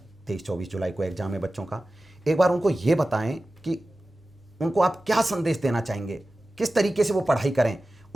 23-24 जुलाई को एग्जाम है बच्चों का। एक बार उनको ये बताएं कि उनको आप क्या संदेश देना चाहेंगे, किस तरीके से वो पढ़ाई करें।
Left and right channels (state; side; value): normal; both; correlation 0.95